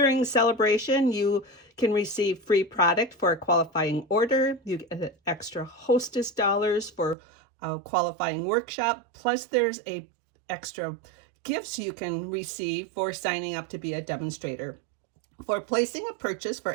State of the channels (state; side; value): drops out; left; at 7.2 s